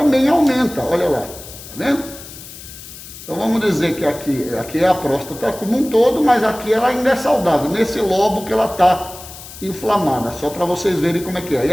aumenta, olha lá, tá vendo? Então vamos dizer que aqui é a próstata como um todo, mas aqui ela ainda é saudável, nesse lobo que ela está inflamada, só para vocês verem como é que é. E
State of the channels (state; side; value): noise; left; hiss, 15 dB below the sound